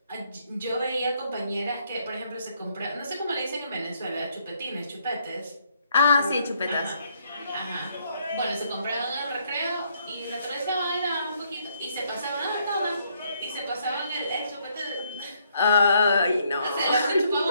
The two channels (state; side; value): inverted; both; correlation -0.71